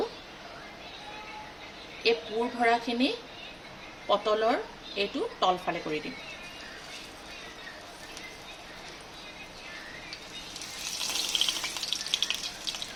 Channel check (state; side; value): identical; both; correlation 1.00